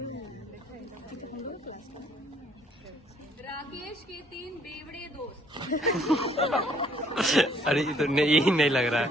राकेश के 3 बेवड़े दोस्त। अरे ये तो नहीं, यही नहीं लग रहा है।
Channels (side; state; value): both; normal; correlation 0.63